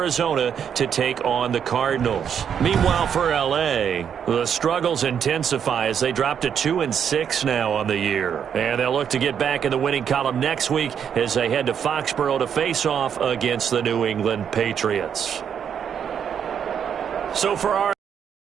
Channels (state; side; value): quieter; left; 8.1 dB